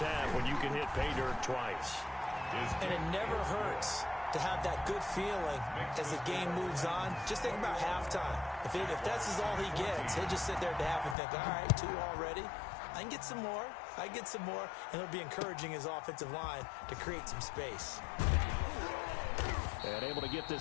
half when you can hit pay dirt twice. And it never hurts to have that good feeling as the game moves on. Just think about halftime. If that's all he gets, he'll just sit there at the half and think, all right, 2 already. I can get some more. I can get some more. And he'll be encouraging his offensive line to create some space. And able to get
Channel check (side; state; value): right; drops out; at 11.2 s